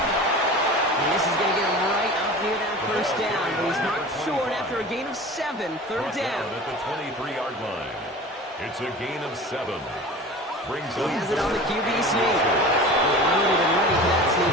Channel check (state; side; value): normal; both; correlation 0.37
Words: this is going to get him right up near that first down. But he's marked short after a gain of 7. Third down. At the 23-yard line. It's a gain of 7. Brings He up has it on the QB sneak. Loaded and ready for that